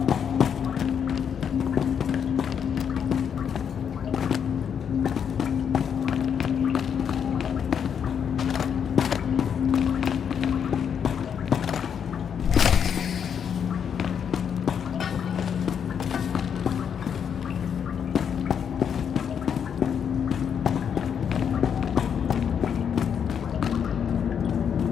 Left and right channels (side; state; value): right; quieter; 7.7 dB